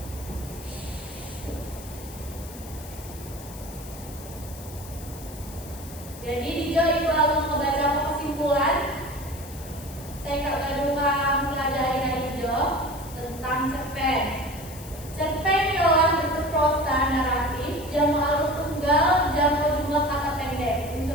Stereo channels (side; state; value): left; noise; hiss, 16 dB below the sound